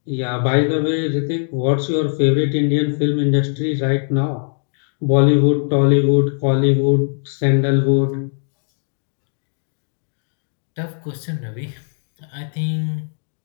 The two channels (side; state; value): right; silent; 63 dB below the other